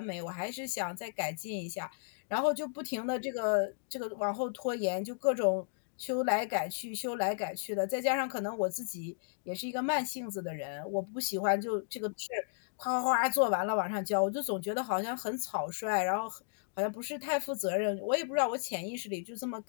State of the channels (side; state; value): right; silent; digital silence